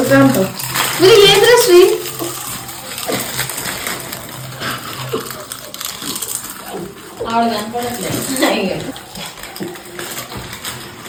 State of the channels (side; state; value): both; identical; correlation 1.00